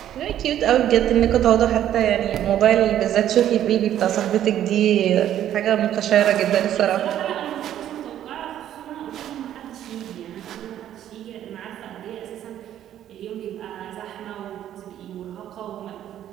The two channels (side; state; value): left; quieter; 11.3 dB